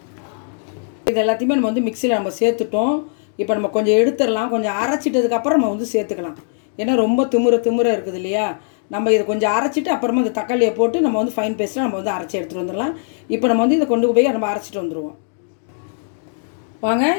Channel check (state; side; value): silent; right; digital silence